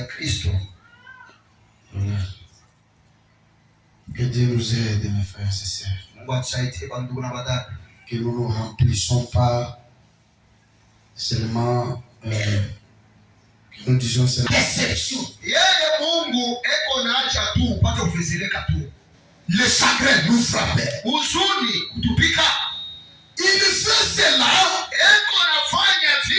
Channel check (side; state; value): both; identical; correlation 1.00